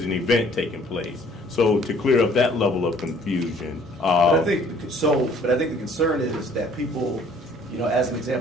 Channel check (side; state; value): both; normal; correlation 0.57